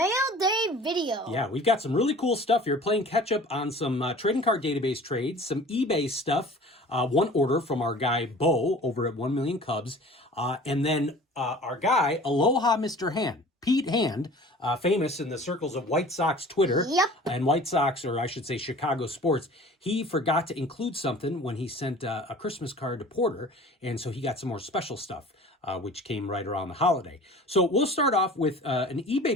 Day video. Yeah, we've got some really cool stuff here, playing catch up on some trading card database trades, some eBay stuff, one order from our guy Beau over at 1 Million Cubs, and then our guy, Aloha Mr. Hand, Pete Hand, famous in the circles of White Sox Twitter and White Sox, or I should say Chicago sports. He forgot to include something when he sent a Christmas card to Porter, and so he got some more special stuff, which came right around the holiday. So we'll start off with an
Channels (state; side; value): normal; both; correlation 0.44